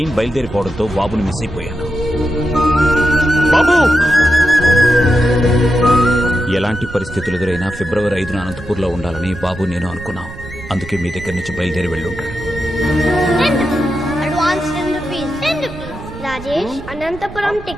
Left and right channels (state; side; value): noise; right; rumble, 14 dB below the sound